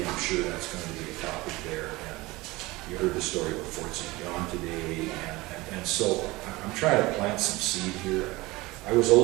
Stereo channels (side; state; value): left; quieter; 21.2 dB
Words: I'm sure that's going to be a topic there. And you heard the story about Fort St. John today. And so I'm trying to plant some seed here. I was a